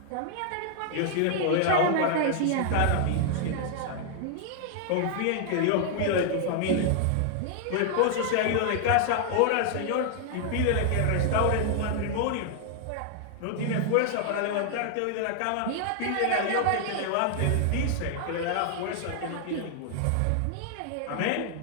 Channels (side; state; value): both; different; correlation 0.00